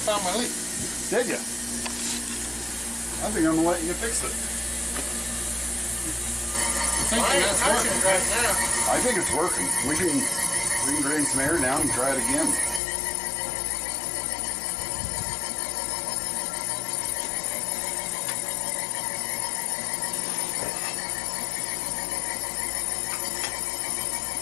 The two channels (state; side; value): drops out; right; at 12.8 s